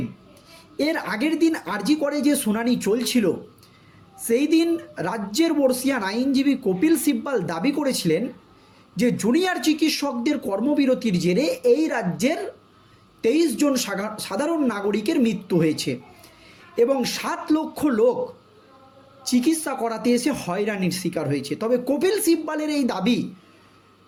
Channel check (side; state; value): both; identical; correlation 1.00